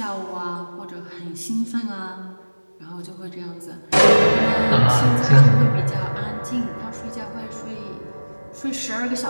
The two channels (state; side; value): inverted; both; correlation -1.00